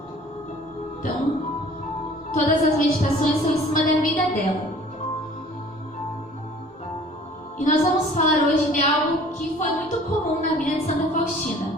Então, todas as meditações são em cima da vida dela. E nós vamos falar hoje de algo que foi muito comum na vida de Santa Faustina,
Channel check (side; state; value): both; normal; correlation 0.50